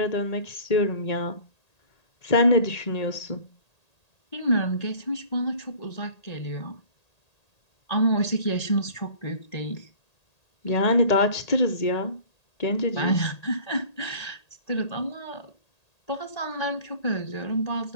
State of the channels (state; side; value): late; right; 1.8 ms